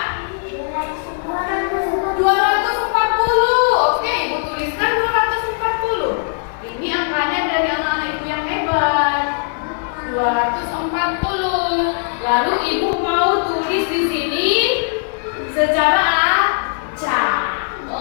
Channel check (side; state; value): right; silent; 67 dB below the other